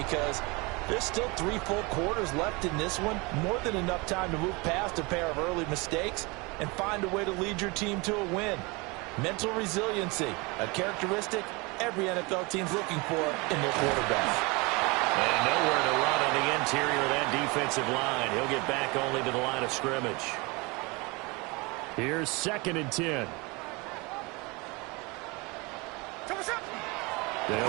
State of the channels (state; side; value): quieter; left; 26.7 dB